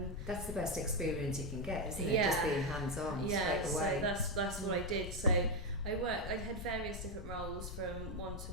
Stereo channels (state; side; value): noise; left; rumble, 7 dB below the sound